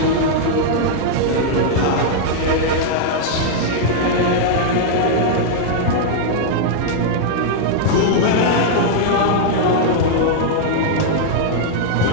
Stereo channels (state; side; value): different; both; correlation -0.01